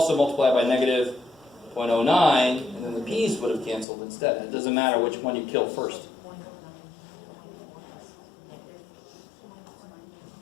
multiplied by negative 0.09, and then the P's would have canceled instead. It doesn't matter which one you kill first.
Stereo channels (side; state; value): right; drops out; at 3.9 s